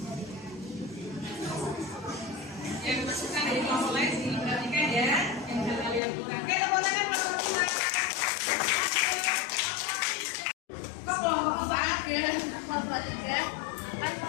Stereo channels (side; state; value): right; drops out; at 6.0 s